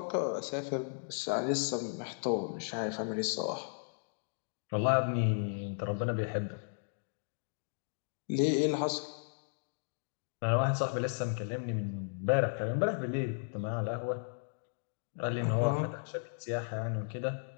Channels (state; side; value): silent; right; digital silence